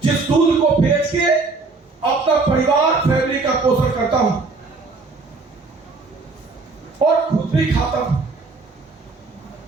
जिस दूध को बेच के अपना परिवार फैमिली का पोषण करता हूं और खुद भी खाता हूं।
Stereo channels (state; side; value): quieter; left; 3.9 dB